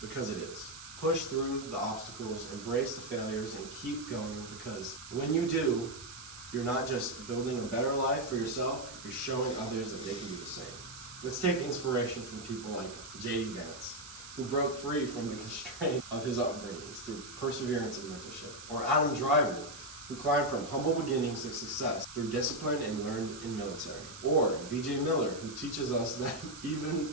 it is. Push through the obstacles, embrace the failures, and keep going, because when you do, you're not just building a better life for yourself, you're showing others that they can do the same. Let's take inspiration from people like J.D. Vance, who broke free from the constraint of his upbringings through perseverance and mentorship. Or Adam Driver, who climbed from humble beginnings to success through discipline and learned in military. Or B.J. Miller, who teaches us that even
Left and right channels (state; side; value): noise; right; hiss, 13 dB below the sound